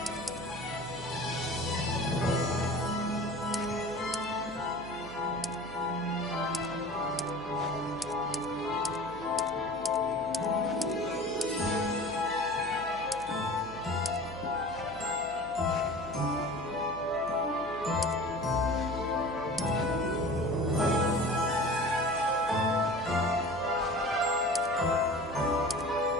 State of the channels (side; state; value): right; noise; hum, 18 dB below the sound